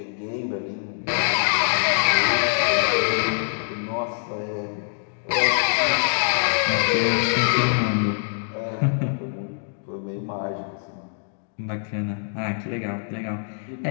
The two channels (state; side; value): silent; right; digital silence